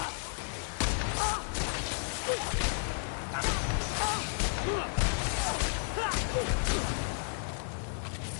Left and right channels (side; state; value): right; silent; digital silence